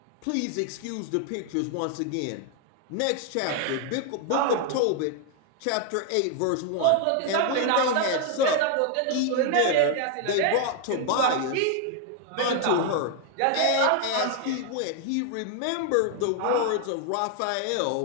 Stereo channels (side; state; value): both; different; correlation 0.00